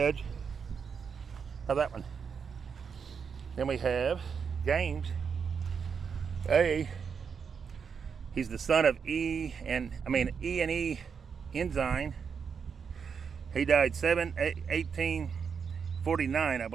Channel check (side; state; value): left; quieter; 6.3 dB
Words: How's that one? Then we have James A. He's the son of E and E Ensign. He died 1849, I